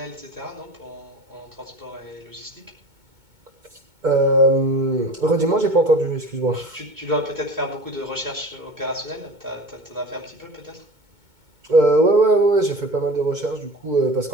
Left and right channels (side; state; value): left; late; 2.2 ms